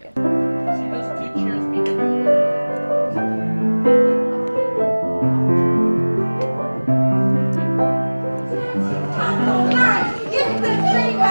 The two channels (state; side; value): inverted; both; correlation -1.00